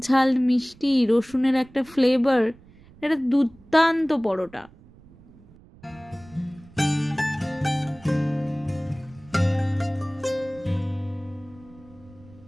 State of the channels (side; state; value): right; noise; rumble, 24 dB below the sound